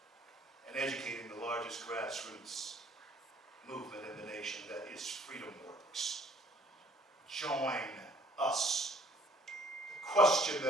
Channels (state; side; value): normal; both; correlation 0.59